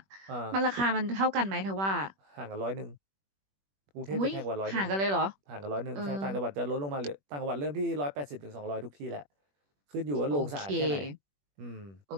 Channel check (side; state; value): left; late; 21 ms